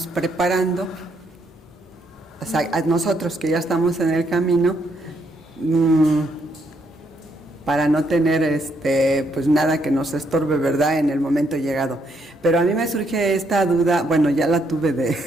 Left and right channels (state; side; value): normal; both; correlation 0.74